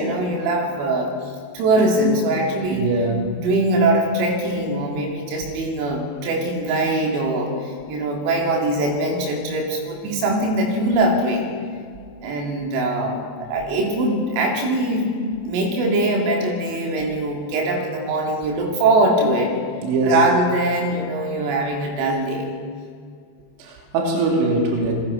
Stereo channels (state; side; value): late; left; 28 ms